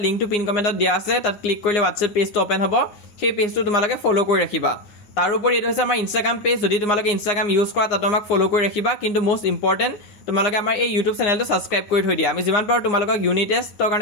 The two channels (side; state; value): right; late; 9.7 ms